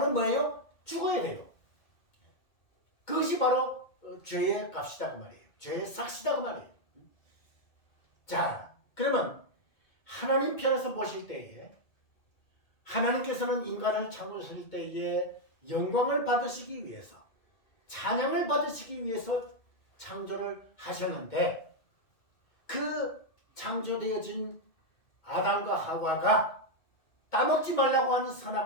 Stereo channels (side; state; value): right; late; 2.2 ms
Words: 뭐예요? 죽어야 돼요. 그것이 바로 죄의 값이다 그 말이에요. 죄의 삭시다 그 말이에요. 자, 그러면 하나님 편에서 보실 때에 하나님께서는 인간을 창조하실 때에 영광을 받으시기 위해서 찬양을 받으시기 위해서 창조를 하셨는데 그 창조되어진 아담과 하와가 따먹지 말라고 하는